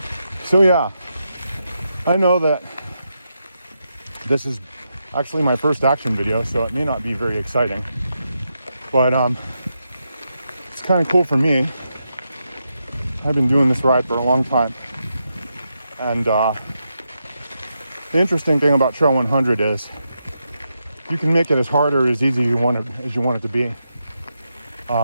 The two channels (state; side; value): inverted; both; correlation -0.85